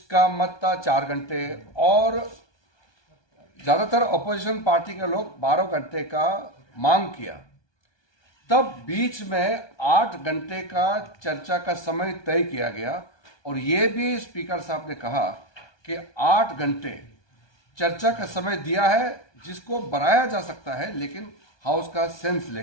का मत था 4 घंटे और ज्यादातर अपोजिशन पार्टी के लोग 12 घंटे का मांग किया। तब बीच में 8 घंटे का चर्चा का समय तय किया गया और ये भी स्पीकर साहब ने कहा कि 8 घंटे चर्चा का समय दिया है जिसको बढ़ाया जा सकता है, लेकिन हाउस का सेंस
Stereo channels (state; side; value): late; right; 1.2 ms